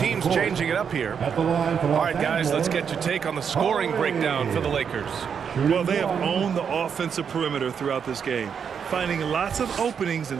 changing it up here. All right, guys, let's get your take on the scoring breakdown for the Lakers. Well, they have owned the offensive perimeter throughout this game, finding lots of openings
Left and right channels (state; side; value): quieter; left; 7.1 dB